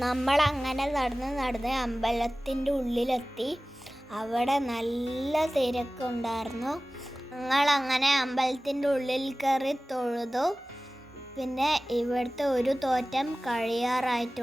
നമ്മൾ അങ്ങനെ നടന്ന് അമ്പലത്തിൻ്റെ ഉള്ളിലെത്തി. അവിടെ നല്ല തിരക്കുണ്ടായിരുന്നു. ഞങ്ങളങ്ങനെ അമ്പലത്തിൻ്റെ ഉള്ളിൽ കയറി തൊഴുതു. പിന്നെ ഇവിടുത്തെ ഒരു തോറ്റം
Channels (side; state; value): both; normal; correlation 0.97